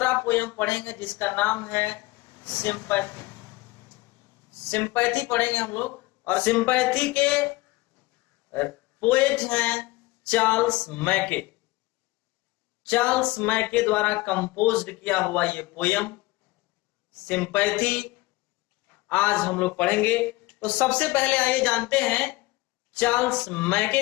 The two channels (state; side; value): quieter; right; 20.8 dB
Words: पोयम पढ़ेंगे जिसका नाम है सिंपैथी। सिंपैथी पढ़ेंगे हम लोग, और सिंपैथी के पोएट हैं चार्ल्स मैके। चार्ल्स मैके द्वारा कंपोज्ड किया हुआ ये पोयम सिंपैथी आज हम लोग पढ़ेंगे। तो सबसे पहले आइए जानते हैं चार्ल्स मैके